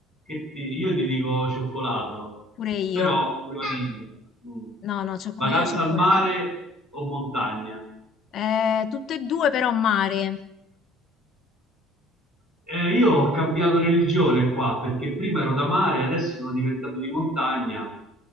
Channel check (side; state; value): both; normal; correlation 0.54